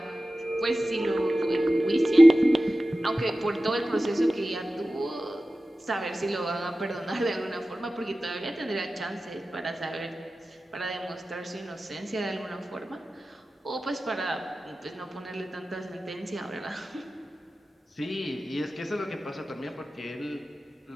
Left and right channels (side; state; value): both; normal; correlation 0.95